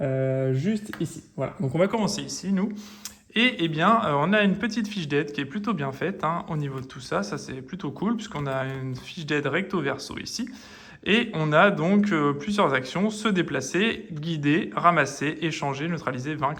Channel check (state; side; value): identical; both; correlation 1.00